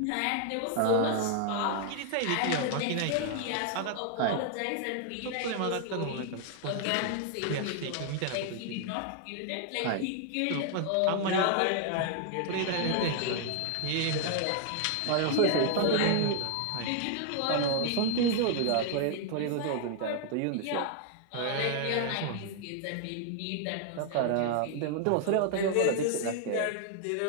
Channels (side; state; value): both; different; correlation 0.00